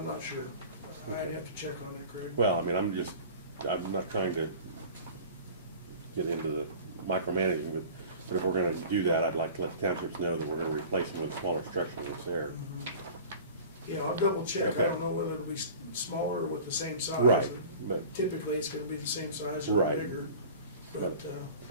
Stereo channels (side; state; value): both; inverted; correlation -0.41